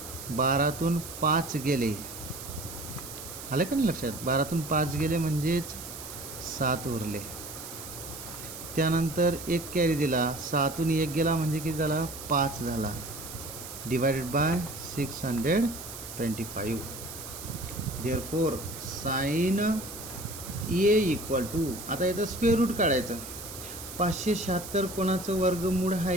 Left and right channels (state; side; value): noise; right; hiss, 11 dB below the sound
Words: 12तून 5 गेले, आलं का नाही लक्षात. 12तून 5 गेले म्हणजेच 7 उरले. त्यानंतर 1 कॅरी दिला, 6तून 1 गेला म्हणजे किती झाला 5 झाला. Divided by 625. Therefore sine A equal to, आता याचं स्क्वेअर रूट काढायचं. 576 कोणाचं वर्गमूळ